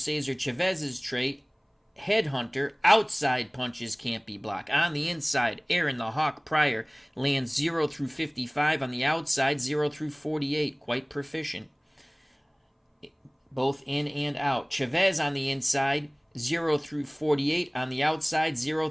Chavez's trait, headhunter, outside punches can't be blocked. On the inside, Aaron the Hawk Pryor lands 0 through 55. On the outside, 0 through 48. Quite proficient, both in and out. Chavez on the inside, 0 through 48. On the outside, 0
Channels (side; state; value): both; identical; correlation 1.00